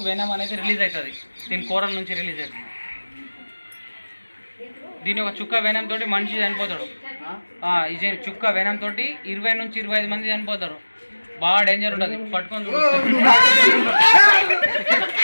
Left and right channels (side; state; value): both; inverted; correlation -1.00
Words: వెనం అనేది రిలీజ్ అవుతుంది, దీని కూరల నుంచి రిలీజ్ అవుతుంది. దీని ఒక చుక్క వెనం తోటి మనిషి చనిపోతాడు. ఇది చుక్క వెనం తోటి 20 నుంచి 25 మంది చనిపోతారు. బాగా డేంజర్ ఉంటుంది, పట్టుకొని